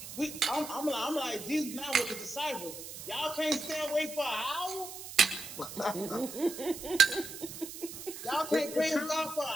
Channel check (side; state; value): right; noise; hiss, 11 dB below the sound